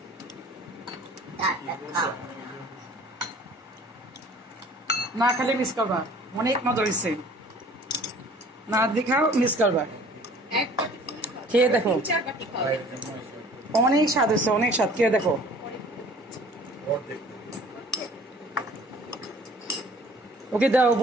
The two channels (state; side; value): normal; both; correlation 0.50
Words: না খালি মিস করবা, অনেক মজা হয়েছে। না দেখাও, মিস করবা, খেয়ে দেখো, অনেক স্বাদ হয়েছে, অনেক স্বাদ। খেয়ে দেখো। ওকে দাও,